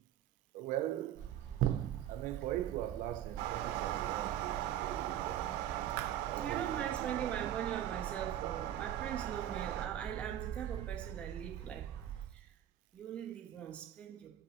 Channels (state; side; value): quieter; left; 11.5 dB